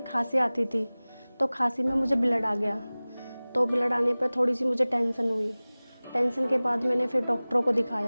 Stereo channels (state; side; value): inverted; both; correlation -0.99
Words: खांसी आती थी, तो खांसी में मुझे ब्लड आ गया। तो ब्लड आने पर थोड़ी सी मुझे टेंशन हुई। टेंशन के बाद मैंने फिर डॉक्टरों को